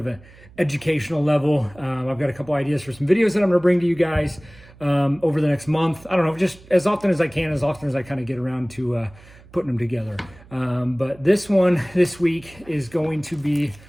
an educational level. I've got a couple ideas for some videos that I'm going to bring to you guys over the next month. I don't know, just as often as I can, as often as I kind of get around to putting them together. But this one this week is going to be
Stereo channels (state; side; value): noise; right; hum, 23 dB below the sound